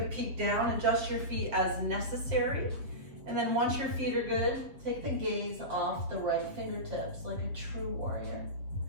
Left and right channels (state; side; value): late; left; 7.4 ms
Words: peek down, adjust your feet as necessary. And then once your feet are good, take the gaze off the right fingertips like a true warrior.